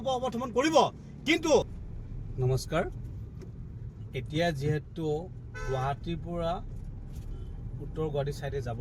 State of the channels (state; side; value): identical; both; correlation 1.00